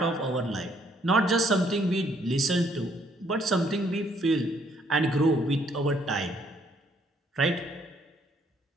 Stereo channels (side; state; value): both; normal; correlation 0.67